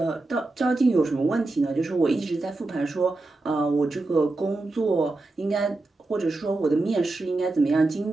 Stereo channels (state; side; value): quieter; left; 3.1 dB